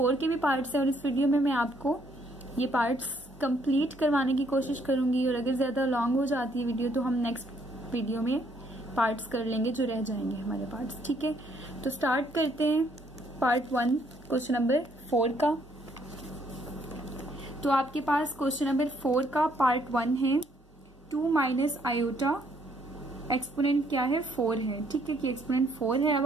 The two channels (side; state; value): both; normal; correlation 0.68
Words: के भी पार्ट्स हैं। और इस वीडियो में मैं आपको ये पार्ट्स कंप्लीट करवाने की कोशिश करूंगी, और अगर ज्यादा लॉन्ग हो जाती है वीडियो तो हम नेक्स्ट वीडियो में पार्ट्स कर लेंगे जो रह जाएंगे हमारे पार्ट्स, ठीक है। तो स्टार्ट करते हैं पार्ट 1 क्वेश्चन नंबर 4 का। तो आपके पास क्वेश्चन नंबर 4 का पार्ट 1 है 2 माइनस आयोटा, एक्सपोनेंट क्या है 4 है, ठीक है, कि एक्सपोनेंट 4 है। अब